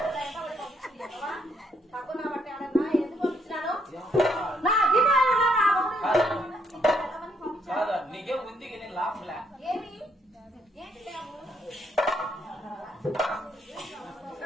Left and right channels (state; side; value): normal; both; correlation 0.72